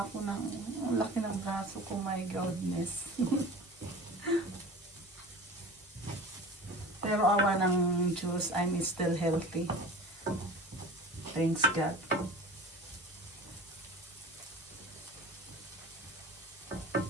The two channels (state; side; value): normal; both; correlation 0.38